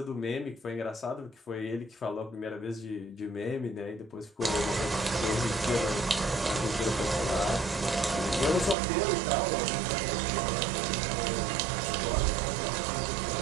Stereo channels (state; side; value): drops out; left; at 8.8 s